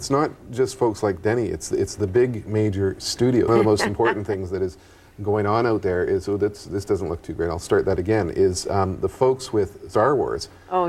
not just folks like Denny. It's the big major studio. One of the most important things that is going on out there is, so this doesn't look too great. I'll start that again. Is the folks with Star Wars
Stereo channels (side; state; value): both; identical; correlation 1.00